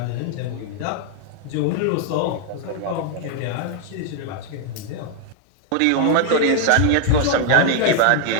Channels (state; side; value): different; both; correlation 0.00